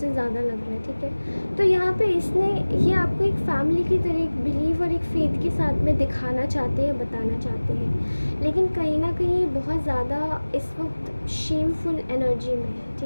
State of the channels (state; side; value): inverted; both; correlation -1.00